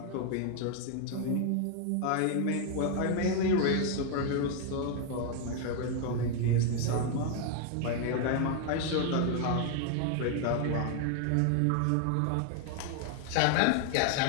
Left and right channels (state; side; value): different; both; correlation 0.00